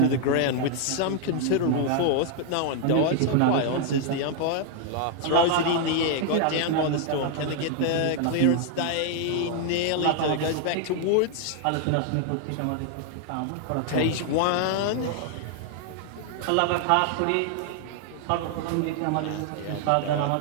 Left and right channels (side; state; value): both; different; correlation 0.00